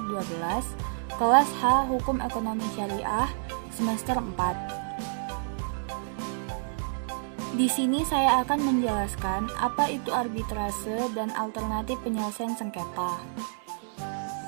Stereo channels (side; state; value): left; silent; digital silence